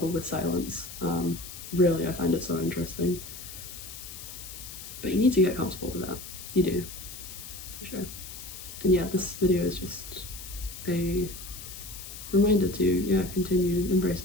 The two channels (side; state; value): left; noise; hiss, 12 dB below the sound